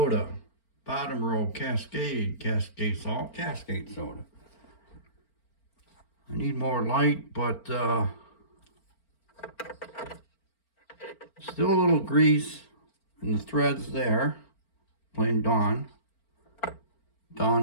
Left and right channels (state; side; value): late; right; 4.4 ms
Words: Bottom row, Cascade salt, Cascade soda. I need more light, but still a little grease in the threads there. Plain Dawn